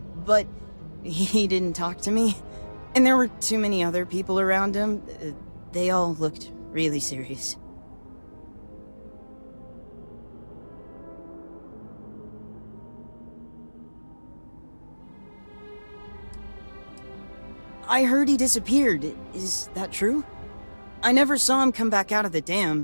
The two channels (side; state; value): both; inverted; correlation -1.00